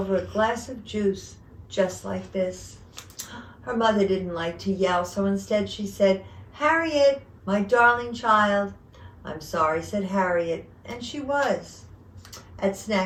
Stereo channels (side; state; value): both; identical; correlation 1.00